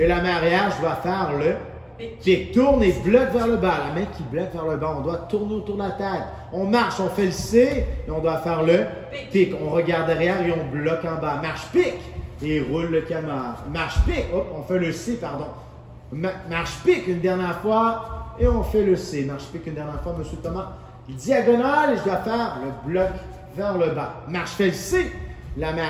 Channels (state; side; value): identical; both; correlation 1.00